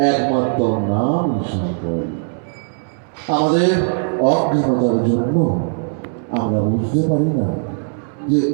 একমাত্র নাম সম্পদ। আমাদের অজ্ঞানতার জন্য আমরা বুঝতে পারি না যে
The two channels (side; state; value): left; silent; 67 dB below the other